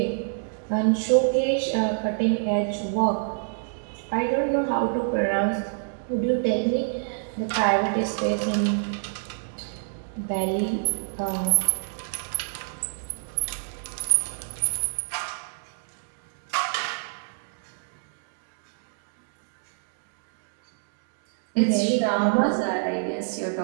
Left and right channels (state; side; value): silent; left; digital silence